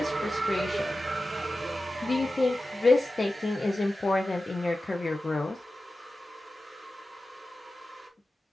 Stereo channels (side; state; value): both; normal; correlation 0.94